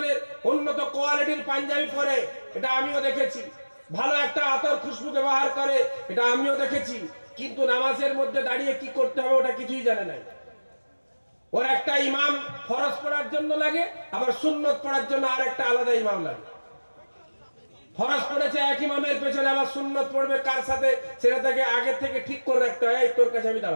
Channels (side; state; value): both; inverted; correlation -1.00